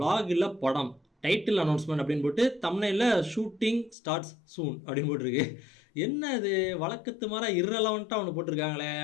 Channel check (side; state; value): right; drops out; at 4.0 s